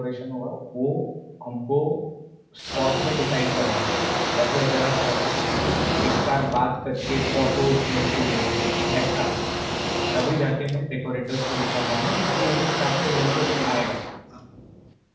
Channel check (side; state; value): both; identical; correlation 1.00